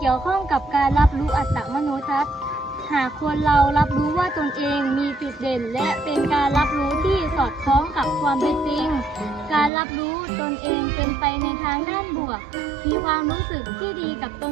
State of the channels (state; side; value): drops out; left; at 9.7 s